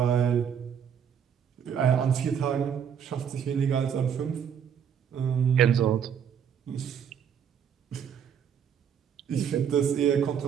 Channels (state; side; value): quieter; left; 8.0 dB